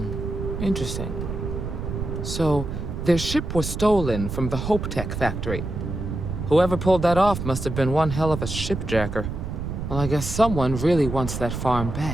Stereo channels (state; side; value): noise; right; rumble, 5 dB below the sound